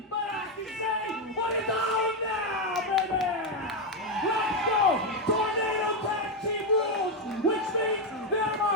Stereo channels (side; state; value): both; normal; correlation 0.05